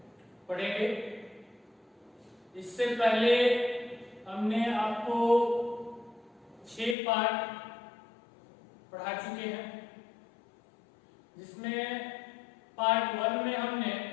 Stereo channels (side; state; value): right; drops out; at 7.0 s